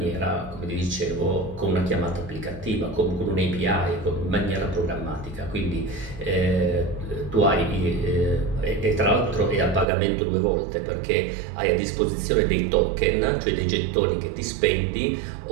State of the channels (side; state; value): left; drops out; at 9.9 s